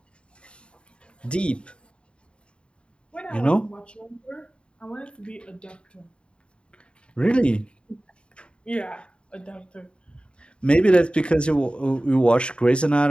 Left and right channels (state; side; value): late; right; 0.055 ms